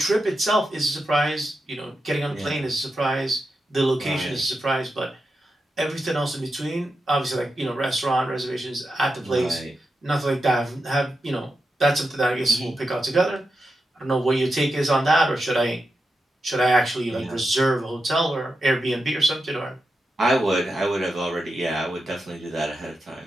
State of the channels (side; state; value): both; normal; correlation 0.88